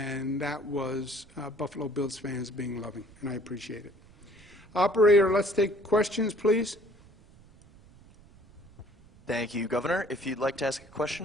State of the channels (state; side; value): noise; right; rumble, 25 dB below the sound